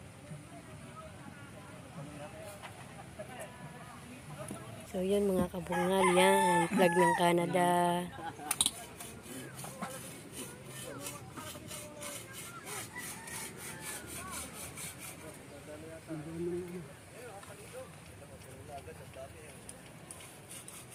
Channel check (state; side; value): identical; both; correlation 1.00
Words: So yan mga kabungal, yan, plug ng Canada.